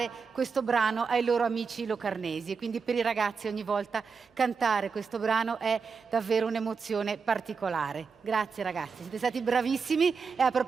questo brano ai loro amici locarnesi, e quindi per i ragazzi ogni volta cantare questo brano è davvero un'emozione particolare. Grazie ragazzi, siete stati bravissimi. E a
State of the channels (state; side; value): quieter; left; 5.4 dB